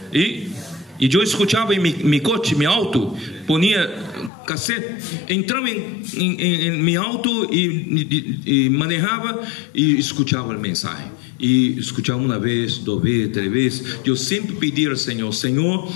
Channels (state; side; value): drops out; right; at 4.3 s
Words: Y yo escuchaba en mi coche, mi auto, ponía cassette, entraba en mi auto y manejaba y escuchaba el mensaje. Y escuchaba una vez, 2 veces, 3 veces. Yo siempre pedí al Señor: Señor,